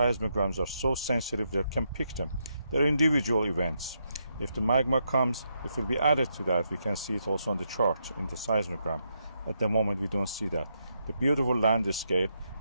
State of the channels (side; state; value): both; inverted; correlation -0.80